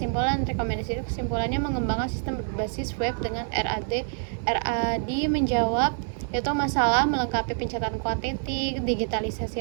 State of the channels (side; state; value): left; silent; 57 dB below the other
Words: mengembangkan sistem berbasis web dengan RAD menjawab yaitu masalah melengkapi pencatatan kuantiti,